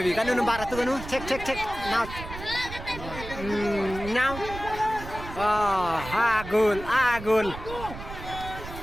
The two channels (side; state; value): right; noise; rumble, 11 dB below the sound